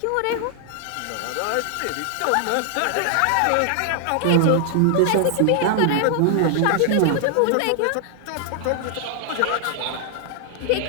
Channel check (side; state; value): both; different; correlation 0.00